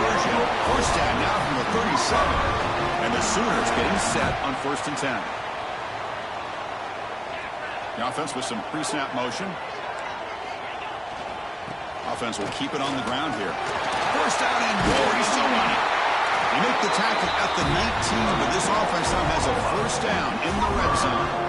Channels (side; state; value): both; identical; correlation 1.00